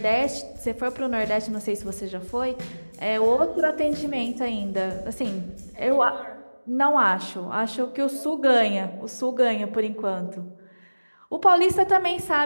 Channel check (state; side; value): inverted; both; correlation -1.00